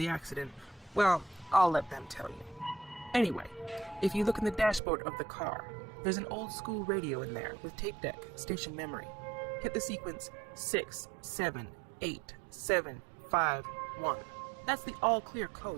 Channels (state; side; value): drops out; left; at 4.8 s